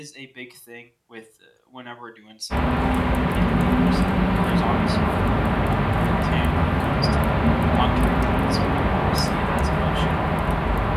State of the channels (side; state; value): both; identical; correlation 1.00